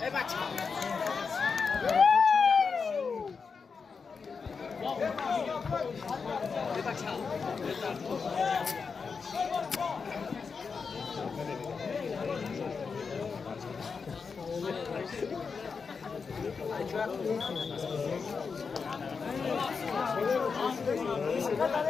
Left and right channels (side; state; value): right; quieter; 5.3 dB